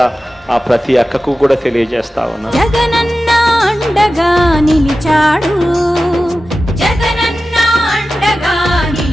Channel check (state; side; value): normal; both; correlation 0.94